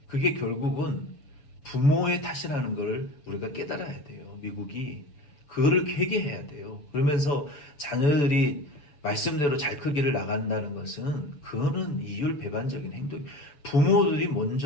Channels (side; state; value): right; late; 6.9 ms